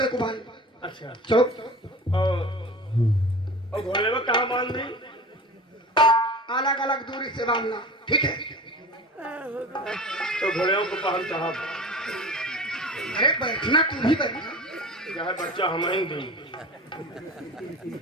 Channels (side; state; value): both; normal; correlation 0.36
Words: को बांध। अच्छा चलो। और घोड़े में कहाँ बांध दी? अलग अलग दूरी से बांधना, ठीक है? तो घोड़े को पहन साहब। अरे बैठना, तू भी बैठना। जहाँ बच्चा हम ही दी